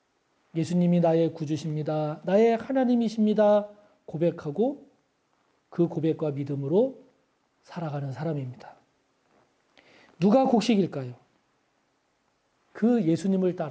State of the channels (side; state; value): both; identical; correlation 1.00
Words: 예수님이 나의 구주십니다. 나의 하나님이십니다. 고백하고 그 고백과 믿음으로 살아가는 사람입니다. 누가 곡식일까요? 그 예수님을